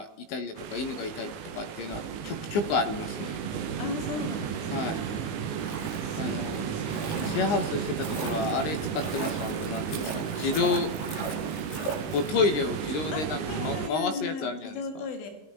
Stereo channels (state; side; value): late; right; 19 ms